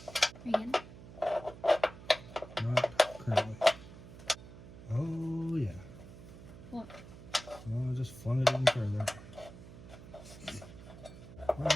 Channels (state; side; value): noise; right; hum, 16 dB below the sound